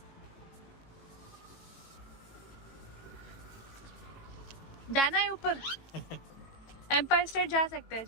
जाना है ऊपर। एम्पायर स्टेट जा सकते हैं,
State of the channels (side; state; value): right; late; 18 ms